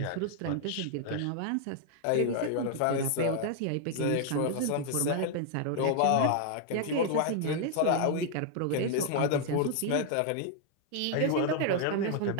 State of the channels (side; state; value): both; different; correlation 0.00